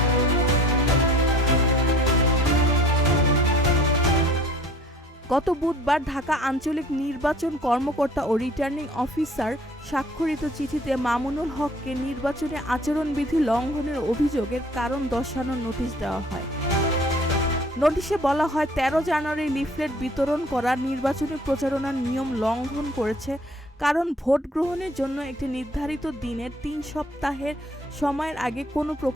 গত বুধবার ঢাকা আঞ্চলিক নির্বাচন কর্মকর্তা ও রিটার্নিং অফিসার স্বাক্ষরিত চিঠিতে মামুনুল হককে নির্বাচনী আচরণবিধি লঙ্ঘনের অভিযোগের কারণ দর্শানোর নোটিশ দেওয়া হয়। নোটিশে বলা হয়, 13 জানুয়ারি লিফলেট বিতরণ করা নির্বাচনী প্রচারণার নিয়ম লঙ্ঘন করেছে, কারণ ভোট গ্রহণের জন্য একটি নির্ধারিত দিনের 3 সপ্তাহের সময়ের আগে কোনো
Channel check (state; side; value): normal; both; correlation 0.52